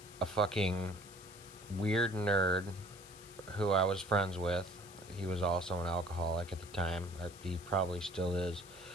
a fucking weird nerd who I was friends with. He was also an alcoholic at the time. He probably still is.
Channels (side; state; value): left; noise; hiss, 19 dB below the sound